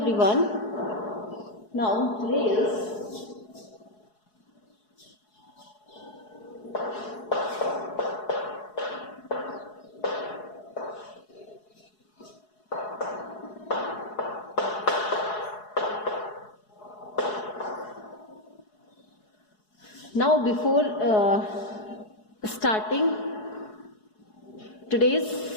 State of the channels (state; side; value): late; right; 4.7 ms